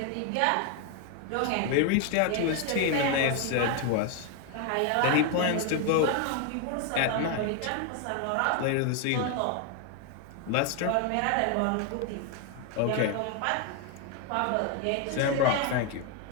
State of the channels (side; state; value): both; different; correlation 0.01